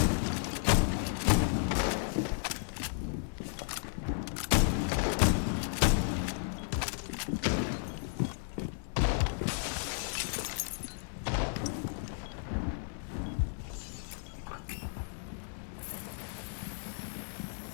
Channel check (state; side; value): silent; right; 55 dB below the other